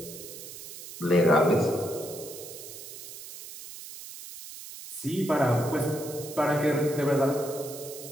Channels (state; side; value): noise; right; hiss, 13 dB below the sound